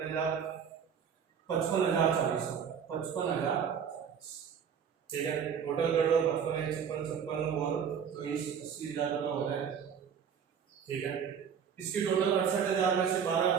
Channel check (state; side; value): quieter; left; 7.4 dB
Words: 55,040 55,000। ठीक है, टोटल कर लो 55 56 और 80,000 रुपये हो रहे हैं। ठीक है, इसकी टोटल 68,000 में से 12